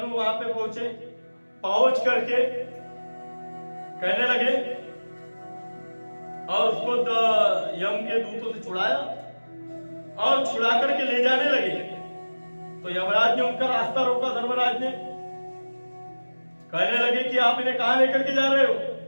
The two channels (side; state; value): both; inverted; correlation -1.00